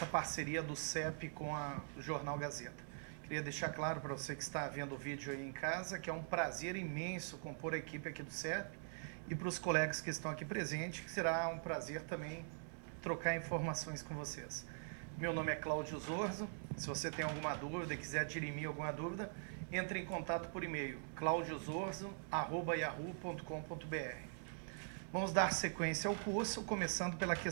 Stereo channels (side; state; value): left; silent; digital silence